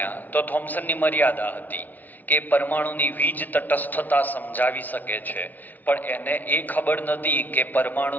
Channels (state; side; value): late; right; 0.081 ms